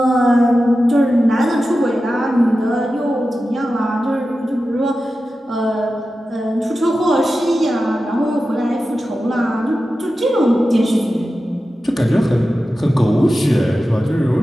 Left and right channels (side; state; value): both; normal; correlation 0.93